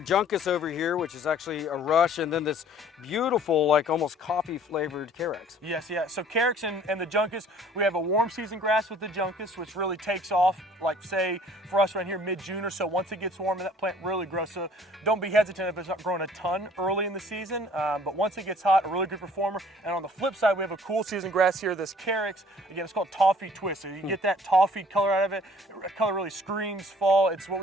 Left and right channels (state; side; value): normal; both; correlation 0.54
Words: Juncus over here, which is actually a rush, and then this beautiful, like almost coffee flavored Carex. Yes, yeah. So Carex and the Juncus, we have a warm season grass with the Juncus, which really takes off, like say for us right here, mid-June or so. Once it gets warm, that plant really grows. So don't be hesitant if it's not growing a ton early in the season, but once it gets hot, a really good performer. And on the flip side, we have a cool season grass here, this Carex. Again, it's called Toffee Twist. So you get that toffee color out of it. The color really screams fall. It's what